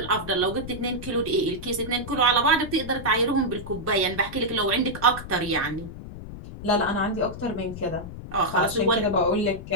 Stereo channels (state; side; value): noise; left; rumble, 11 dB below the sound